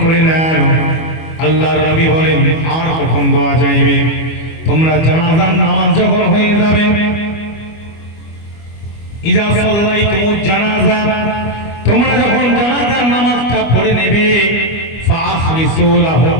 করে নেন। আল্লাহর নবী বলেন আর কখন দোয়া চাইবে? তোমরা জানাজার নামাজ যখন হয়ে যাবে, ইজা সাল্লাইতুমুজ জানাজা, তোমরা যখন জানাজার নামাজটা পড়ে নেবে, ফাআখলিসু লাহু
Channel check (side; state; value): right; late; 25 ms